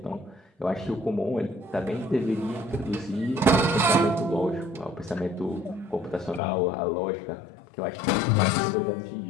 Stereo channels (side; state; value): right; drops out; at 6.4 s